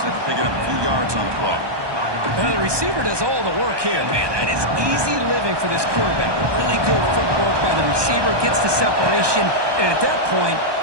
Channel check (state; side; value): late; left; 1.2 ms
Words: after picking up a few yards on the play. The receiver does all the work here. Man, that is easy living for this quarterback. Really good footwork by the receiver. Gets the separation. And at that point,